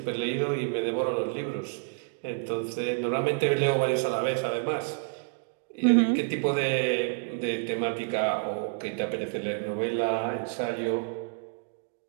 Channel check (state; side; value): silent; left; digital silence